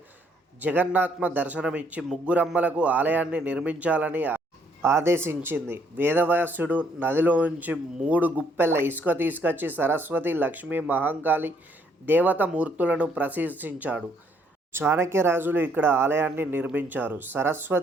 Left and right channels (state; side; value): normal; both; correlation 0.68